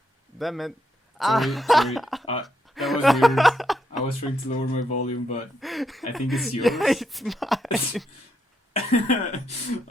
Damn it. Sorry. That was weird. I was trying to lower my volume, but I think it's yours. Yeah, it's mine.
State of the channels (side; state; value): both; normal; correlation 0.79